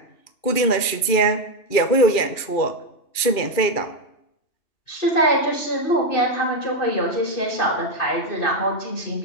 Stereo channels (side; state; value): right; late; 2.4 ms